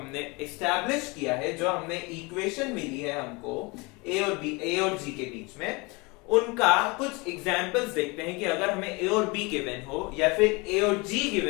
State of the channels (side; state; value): right; quieter; 26.8 dB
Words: एस्टैब्लिश किया है, जो हमने इक्वेशन मिली है हमको a और g के बीच में, उनका कुछ एग्जांपल्स देखते हैं कि अगर हमें a और b गिवन हो या फिर a और g